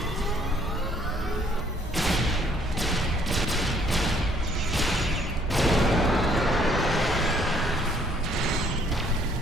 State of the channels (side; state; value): both; normal; correlation 0.63